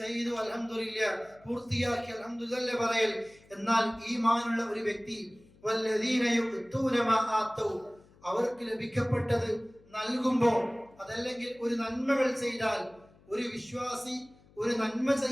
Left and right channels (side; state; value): left; noise; hum, 27 dB below the sound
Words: ചെയ്തു അൽഹംദുലില്ലാഹ്, പൂർത്തിയാക്കി അൽഹംദുലില്ലാഹ് പറയൽ. എന്നാൽ ഈമാനുള്ള ഒരു വ്യക്തി വല്ലദീന യുഅ്തൂന മാ ആതൗ, അവർക്ക് ലഭിക്കപ്പെട്ടത് നൽകുമ്പോൾ, അതല്ലെങ്കിൽ ഒരു നന്മകൾ ചെയ്താൽ, ഒരു വിശ്വാസി ഒരു നന്മ